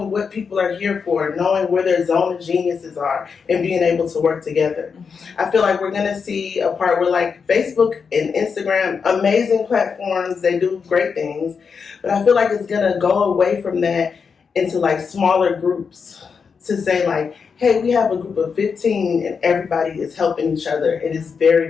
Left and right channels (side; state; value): right; quieter; 5.8 dB